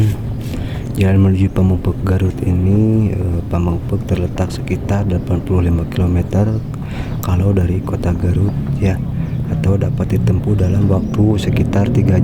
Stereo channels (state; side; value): identical; both; correlation 1.00